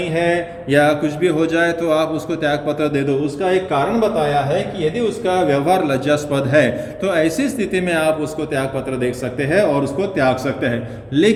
है या कुछ भी हो जाए तो आप उसको त्याग पत्र दे दो। उसका एक कारण बताया है कि यदि उसका व्यवहार लज्जास्पद है तो ऐसी स्थिति में आप उसको त्याग पत्र दे सकते हैं और उसको त्याग सकते हैं।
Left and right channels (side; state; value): both; identical; correlation 1.00